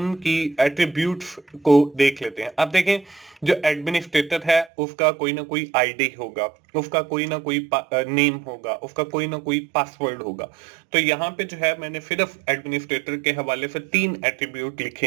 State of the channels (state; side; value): drops out; left; at 4.7 s